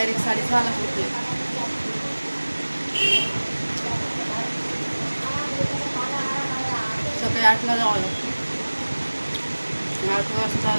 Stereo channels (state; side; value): inverted; both; correlation -1.00